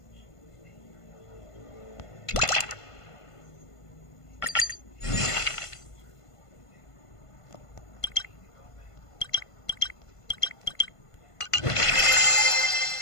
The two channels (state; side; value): late; right; 1.5 ms